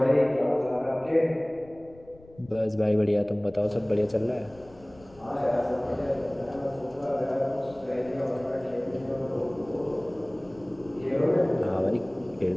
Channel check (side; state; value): left; noise; rumble, 24 dB below the sound